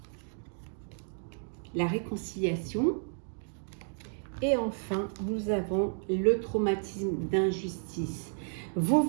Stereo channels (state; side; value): silent; left; digital silence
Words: la réconciliation et enfin nous avons le traumatisme d'injustice. Vous